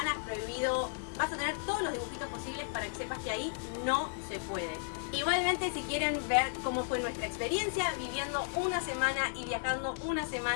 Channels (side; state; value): right; silent; digital silence